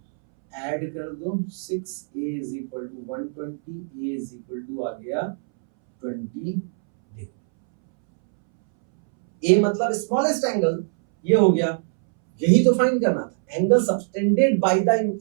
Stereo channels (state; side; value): silent; left; 63 dB below the other